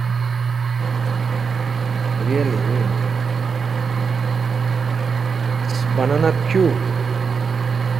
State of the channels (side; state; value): left; quieter; 5.7 dB